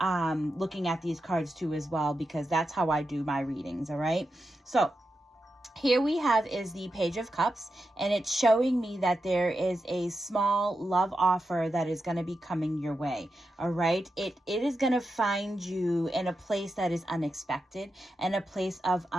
looking at these cards too as well, because that's how I do my readings. All right, so here we have is the Page of Cups, and it's showing me that there is a small love offer that is going to be coming your way. All right. It is going to find you in a place that is unexpected and a place of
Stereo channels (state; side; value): normal; both; correlation 0.88